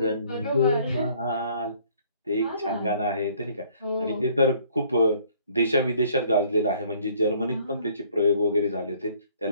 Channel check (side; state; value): both; inverted; correlation -0.60